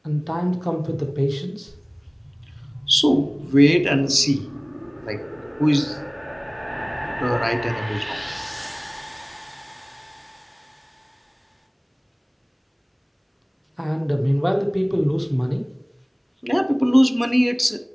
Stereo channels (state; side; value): identical; both; correlation 1.00